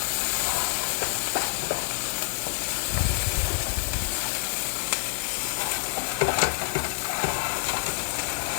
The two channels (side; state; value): right; silent; digital silence